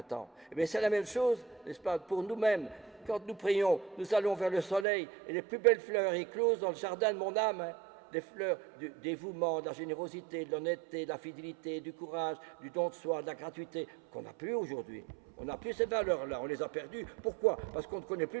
Et bien c'est la même chose, n'est-ce pas, pour nous-mêmes. Quand nous prions, nous allons vers le soleil et les plus belles fleurs éclosent dans le jardin de mon âme. Hein. Des fleurs du dévouement, de la générosité, de l'honnêteté, de la fidélité, du courage, du don de soi, de la gratuité, qu'on n'a plus aujourd'hui. On n'a plus ces valeurs-là, on les a perdues. Pourquoi? Parce qu'on ne connaît plus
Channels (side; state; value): left; drops out; at 4.9 s